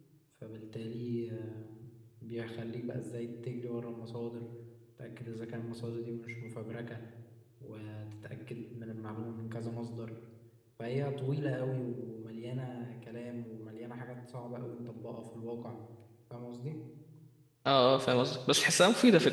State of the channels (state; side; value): identical; both; correlation 1.00